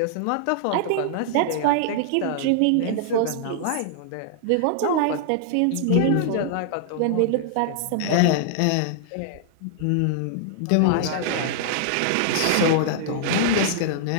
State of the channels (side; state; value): both; different; correlation -0.01